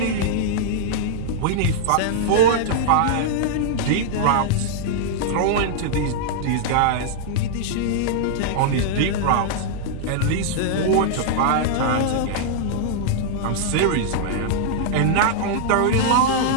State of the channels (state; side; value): different; both; correlation -0.01